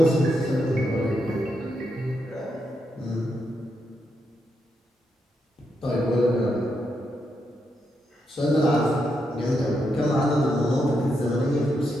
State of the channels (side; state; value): both; normal; correlation 0.82